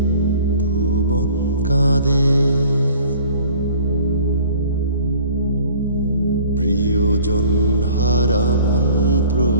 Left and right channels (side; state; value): both; inverted; correlation -0.50